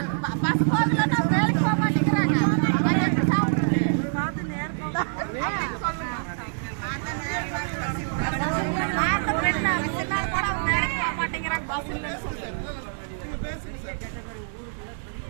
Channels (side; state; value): left; silent; digital silence